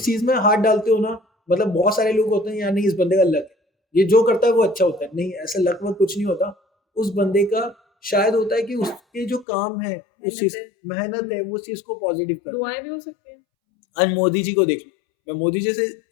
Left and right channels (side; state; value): right; drops out; at 9.5 s